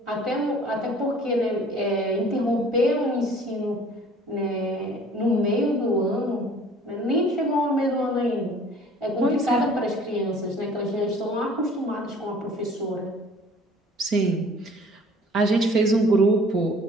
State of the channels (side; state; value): both; normal; correlation 0.51